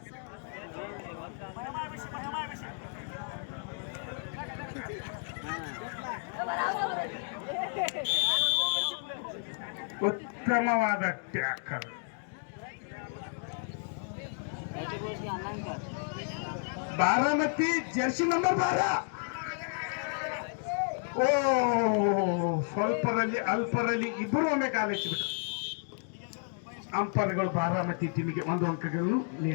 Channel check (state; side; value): silent; right; 56 dB below the other